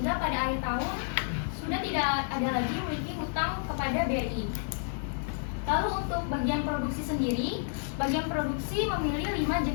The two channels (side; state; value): right; silent; digital silence